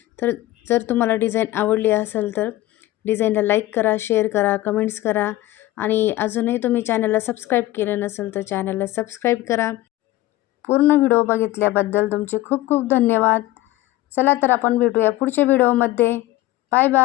तर जर तुम्हाला डिझाईन आवडली असेल तर डिझाईनला लाईक करा, शेअर करा, कमेंट्स करा आणि अजूनही तुम्ही चॅनलला सबस्क्राईब केलं नसेल तर चॅनलला सबस्क्राईब करा. पूर्ण व्हिडिओ बघितल्याबद्दल तुमचे खूप खूप धन्यवाद. चला तर आपण भेटूया पुढच्या व्हिडिओमध्ये. Bye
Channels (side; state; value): right; quieter; 16.5 dB